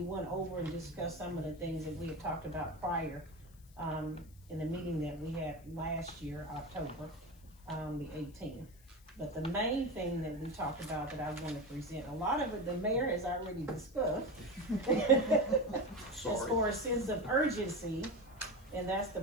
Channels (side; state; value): left; noise; hiss, 27 dB below the sound